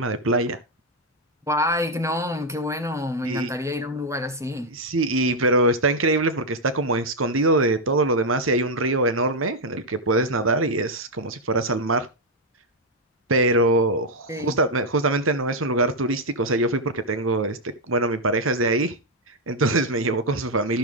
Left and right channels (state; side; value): normal; both; correlation 0.00